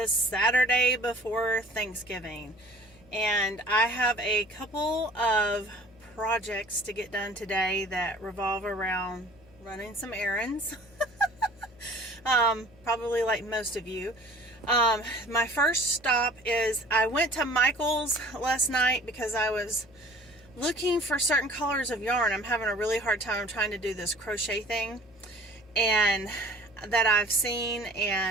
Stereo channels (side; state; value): left; noise; hum, 26 dB below the sound